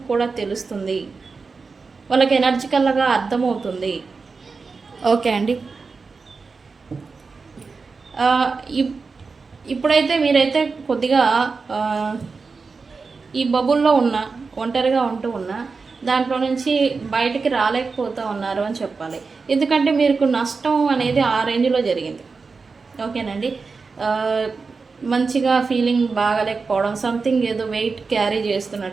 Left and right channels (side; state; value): left; quieter; 4.6 dB